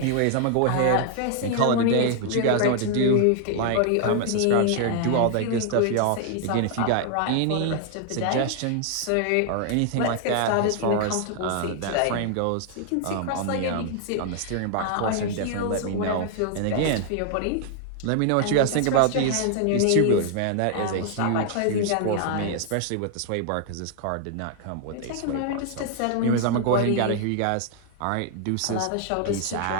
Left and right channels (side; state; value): both; different; correlation 0.00